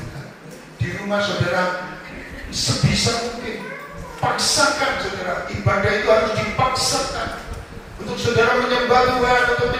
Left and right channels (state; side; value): identical; both; correlation 1.00